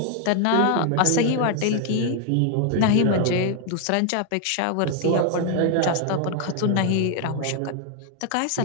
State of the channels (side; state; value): both; different; correlation 0.00